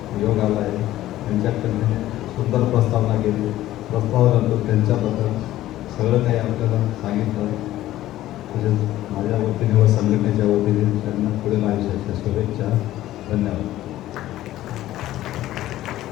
योग आला आहे, त्यांच्याकडे सुंदर प्रस्तावना केली. प्रस्तावानंतर त्यांच्याबद्दल सगळं काही आपल्याला सांगितलं. तसेच माझ्या वतीने व संघटनेच्या वतीने त्यांना पुढील आयुष्याच्या शुभेच्छा. धन्यवाद.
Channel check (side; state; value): right; quieter; 14.5 dB